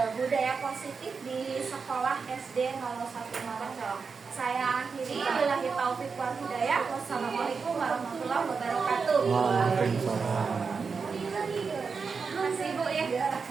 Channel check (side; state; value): left; quieter; 5.2 dB